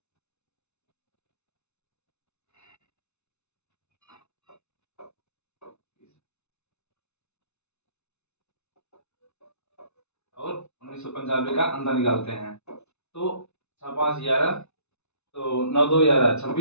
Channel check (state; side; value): late; right; 0.81 ms